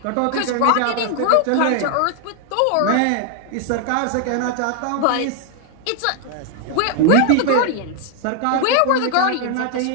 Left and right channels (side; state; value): both; different; correlation 0.00